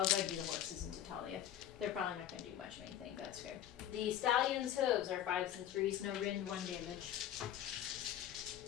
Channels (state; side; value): quieter; right; 11.2 dB